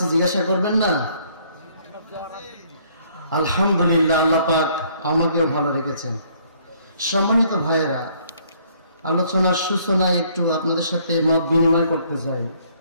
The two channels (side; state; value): both; inverted; correlation -0.63